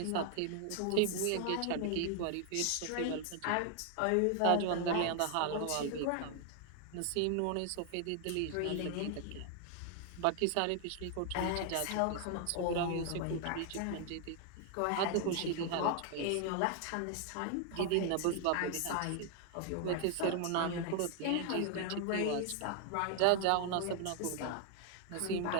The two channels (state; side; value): different; both; correlation 0.00